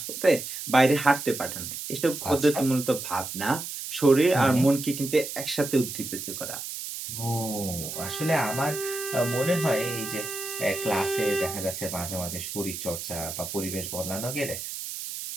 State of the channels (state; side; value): noise; right; hiss, 7 dB below the sound